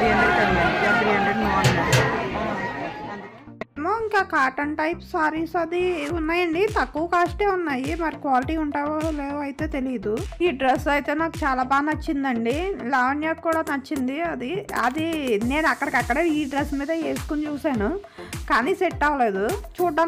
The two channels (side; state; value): both; identical; correlation 1.00